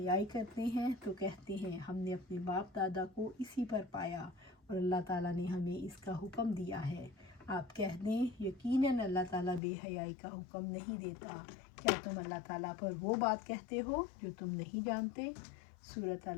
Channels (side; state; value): right; drops out; at 9.6 s